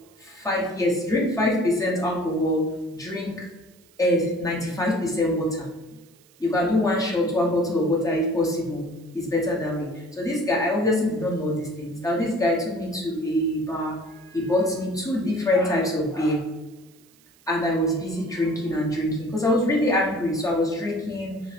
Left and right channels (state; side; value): noise; right; hiss, 30 dB below the sound